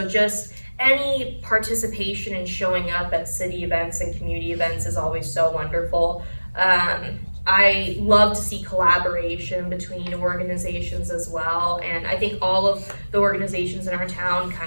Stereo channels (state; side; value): inverted; both; correlation -1.00